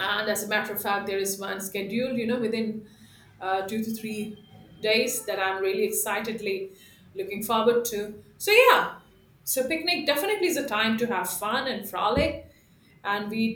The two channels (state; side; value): identical; both; correlation 1.00